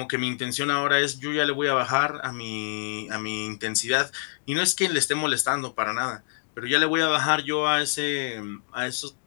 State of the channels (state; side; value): silent; right; digital silence